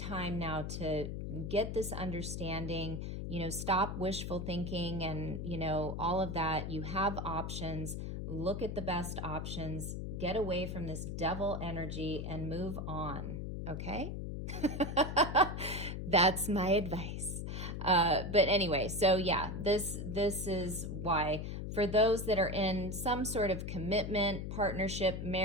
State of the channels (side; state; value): left; noise; hum, 5 dB below the sound